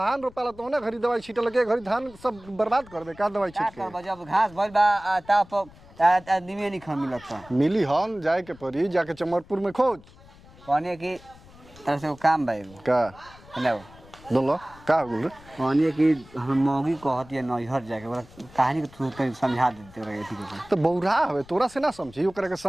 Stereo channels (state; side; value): noise; left; rumble, 23 dB below the sound